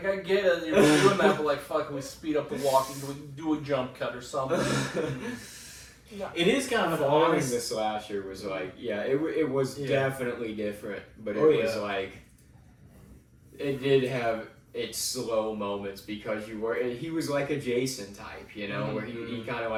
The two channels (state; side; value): identical; both; correlation 1.00